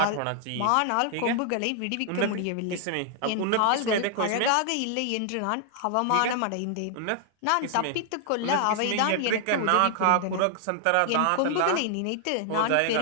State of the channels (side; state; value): both; different; correlation 0.00